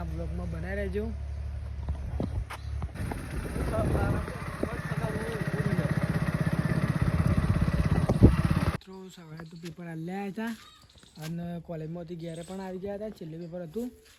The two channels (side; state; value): both; identical; correlation 1.00